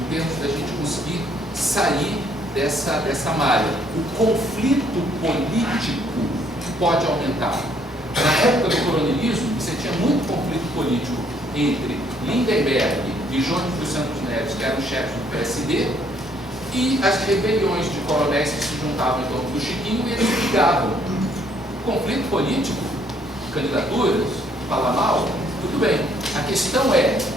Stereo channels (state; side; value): normal; both; correlation 0.66